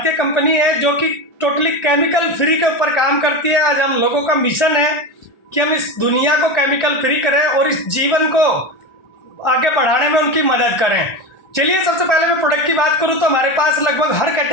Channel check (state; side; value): late; right; 1.4 ms